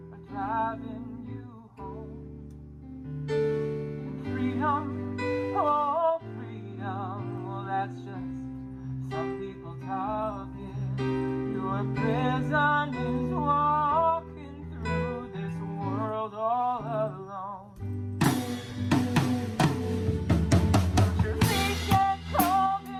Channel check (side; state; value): both; identical; correlation 1.00